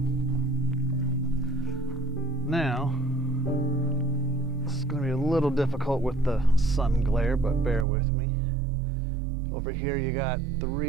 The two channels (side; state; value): left; drops out; at 7.9 s